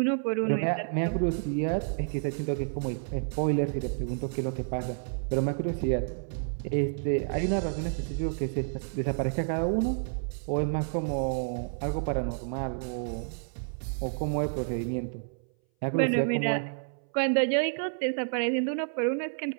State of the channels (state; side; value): silent; left; 58 dB below the other